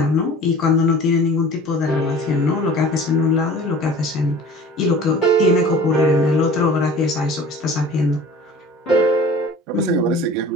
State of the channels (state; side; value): normal; both; correlation 0.43